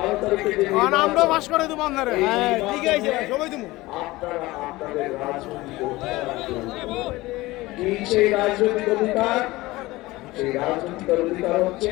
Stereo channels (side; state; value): right; quieter; 19.6 dB